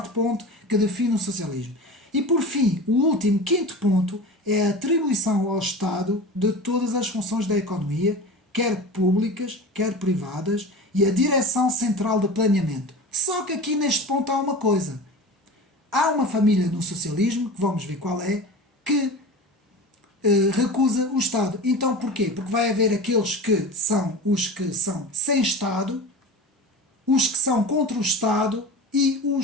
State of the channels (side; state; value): both; normal; correlation 0.32